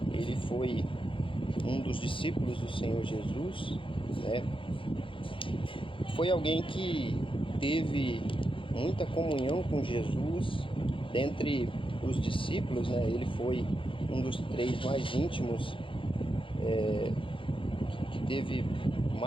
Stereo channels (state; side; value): late; right; 0.25 ms